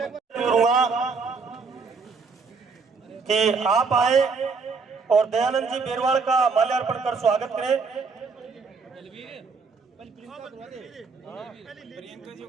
करूंगा कि आप आए और दयानंद जी बेरवाल का माल्यार्पण कर स्वागत करें।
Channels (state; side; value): quieter; left; 4.8 dB